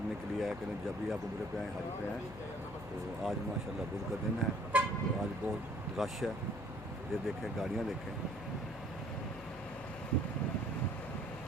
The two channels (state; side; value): noise; left; hum, 15 dB below the sound